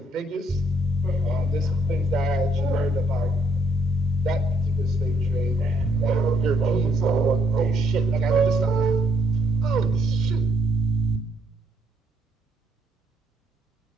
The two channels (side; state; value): both; normal; correlation 0.70